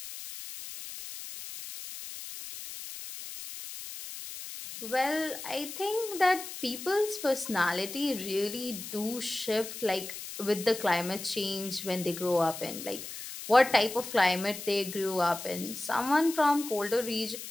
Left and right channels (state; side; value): noise; left; hiss, 10 dB below the sound